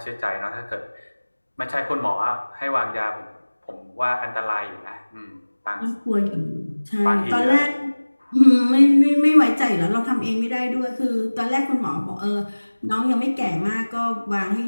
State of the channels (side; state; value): both; inverted; correlation -1.00